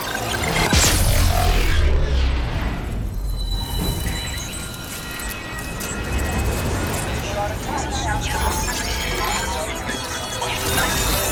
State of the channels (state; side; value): identical; both; correlation 1.00